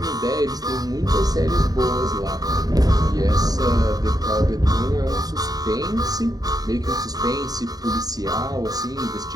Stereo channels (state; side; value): late; left; 0.18 ms